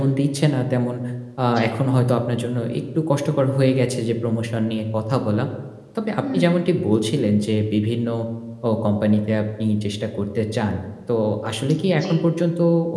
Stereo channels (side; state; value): both; identical; correlation 1.00